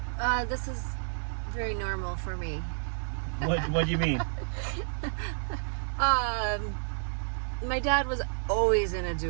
This is very normal for me. What do you mean? My dad was always in a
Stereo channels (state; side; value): silent; left; 58 dB below the other